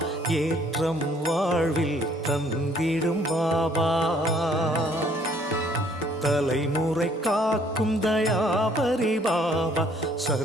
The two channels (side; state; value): both; normal; correlation 0.62